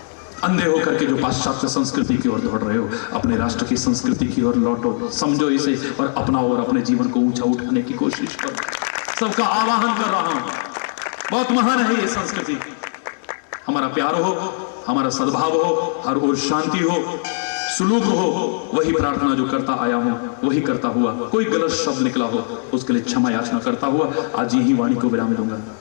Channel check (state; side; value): silent; right; digital silence